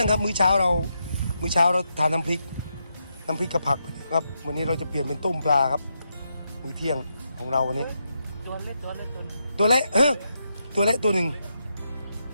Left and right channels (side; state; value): both; inverted; correlation -0.82